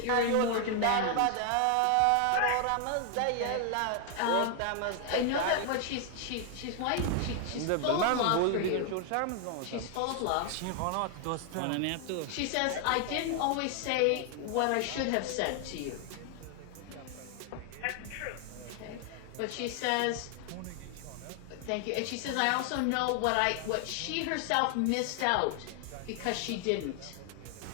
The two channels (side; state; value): both; different; correlation 0.00